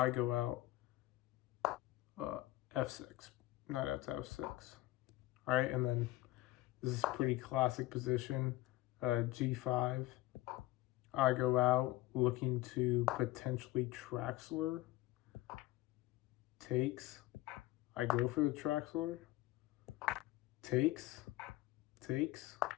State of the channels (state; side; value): quieter; right; 17.5 dB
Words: go out f6. Knight out to f6. Alright, and then this is a pretty classic position. g5. I go out looking to potentially Traxler. Takes. I go for the Traxler. Takes.